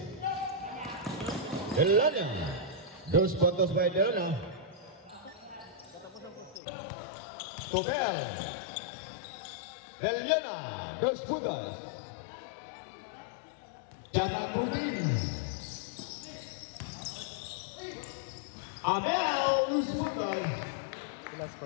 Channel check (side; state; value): right; drops out; at 6.6 s